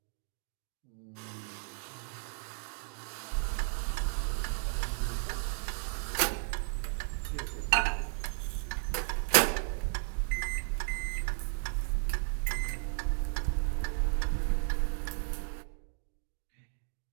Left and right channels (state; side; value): silent; left; 55 dB below the other